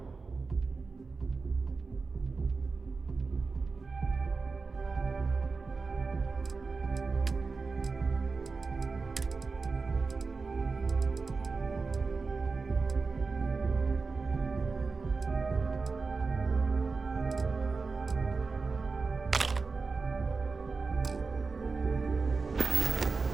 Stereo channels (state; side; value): quieter; left; 4.3 dB